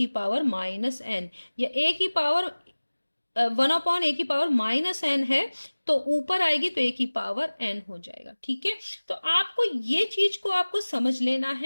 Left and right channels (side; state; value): both; inverted; correlation -1.00